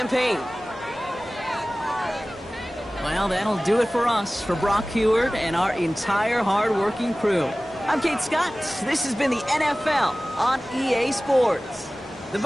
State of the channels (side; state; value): both; normal; correlation 0.97